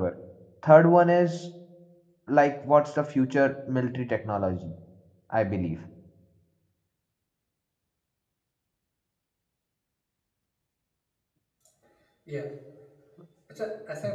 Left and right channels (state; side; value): identical; both; correlation 1.00